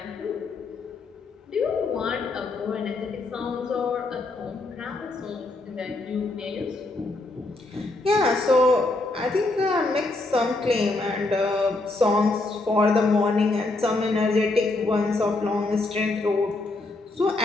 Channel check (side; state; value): right; quieter; 3.1 dB